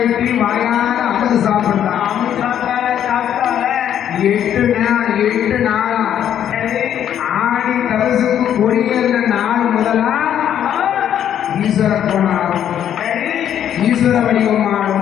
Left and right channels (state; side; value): quieter; right; 10.0 dB